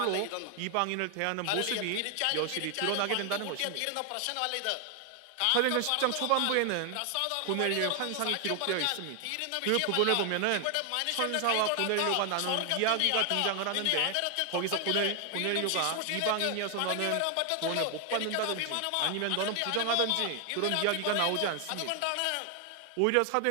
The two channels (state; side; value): different; both; correlation 0.00